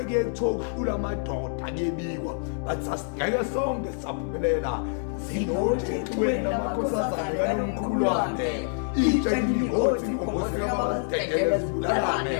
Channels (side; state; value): right; silent; digital silence